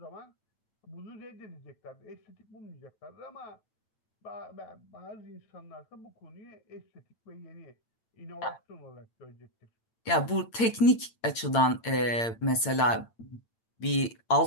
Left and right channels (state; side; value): late; right; 8.8 ms